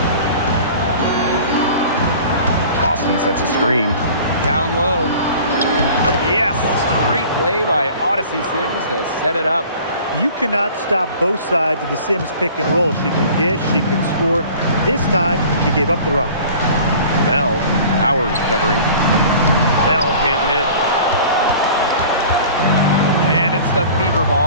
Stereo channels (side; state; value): both; inverted; correlation -0.45